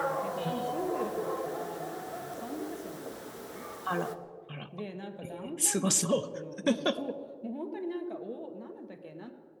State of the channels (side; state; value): both; identical; correlation 1.00